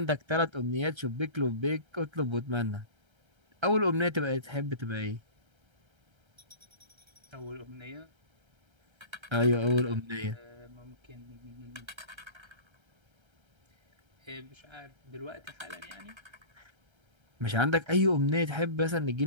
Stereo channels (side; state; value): left; late; 1.3 ms